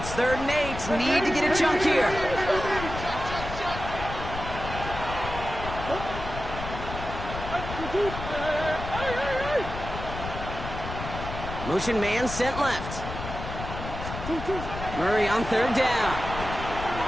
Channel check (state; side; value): noise; left; rumble, 8 dB below the sound